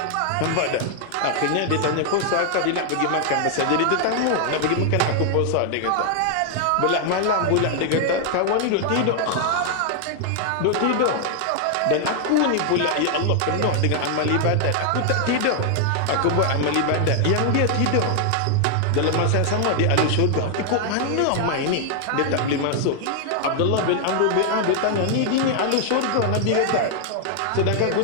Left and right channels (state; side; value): different; both; correlation 0.00